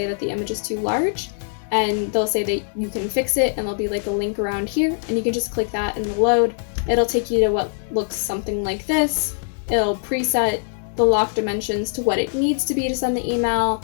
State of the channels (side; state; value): right; silent; digital silence